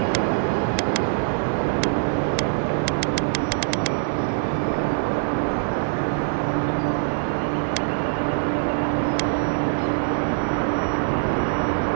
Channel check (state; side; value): silent; left; digital silence